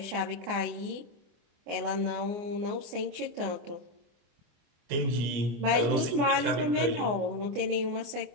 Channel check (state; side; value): late; left; 24 ms